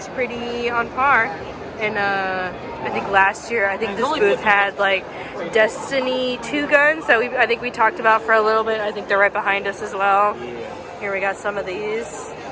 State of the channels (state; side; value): identical; both; correlation 1.00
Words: pretty on par. And I think last year, this booth had like Destiny 2 guns that I think we talked about for a little bit. I think they're right behind us as well. Here we got some of these.